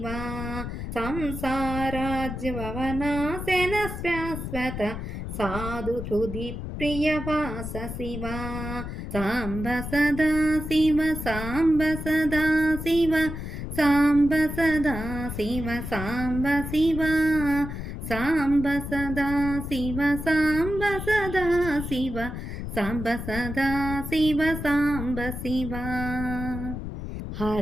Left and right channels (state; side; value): noise; left; rumble, 7 dB below the sound